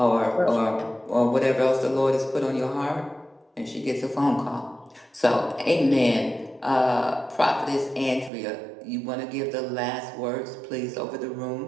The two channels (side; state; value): left; drops out; at 8.3 s